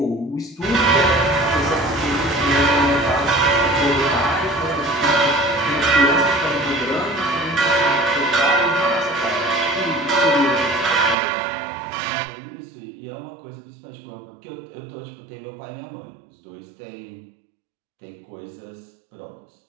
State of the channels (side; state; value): left; drops out; at 11.2 s